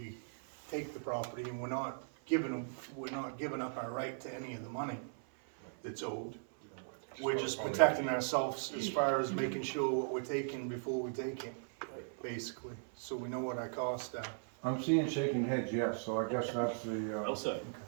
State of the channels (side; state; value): left; silent; 52 dB below the other